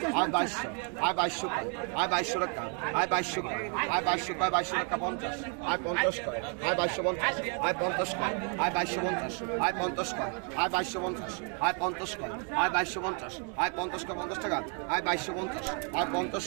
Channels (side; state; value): left; quieter; 39.7 dB